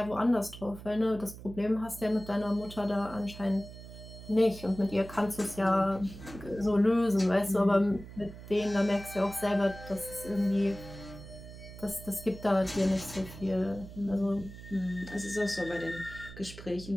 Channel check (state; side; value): noise; right; hum, 14 dB below the sound